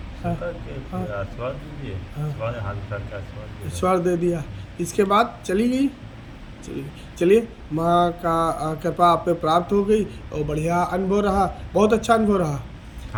स्वीकार किए, हाँ, फिर आशीर्वाद दीजिए। हाँ। आशीर्वाद हाथ उठा के आशीर्वाद दीजिए। ईश्वर दे दिया। इसके बाद चली गई। चलिए, माँ का कृपा आप पे प्राप्त हो गई और बढ़िया अनुभव रहा, बहुत अच्छा अनुभव रहा।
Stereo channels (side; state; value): both; identical; correlation 1.00